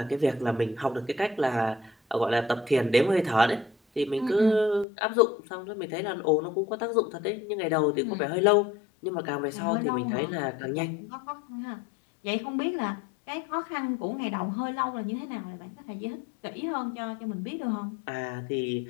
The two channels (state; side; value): drops out; right; at 4.9 s